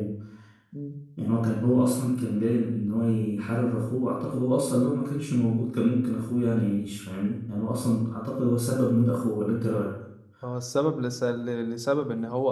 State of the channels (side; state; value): both; identical; correlation 1.00